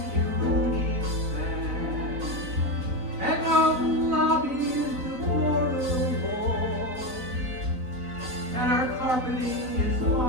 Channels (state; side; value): late; left; 3.9 ms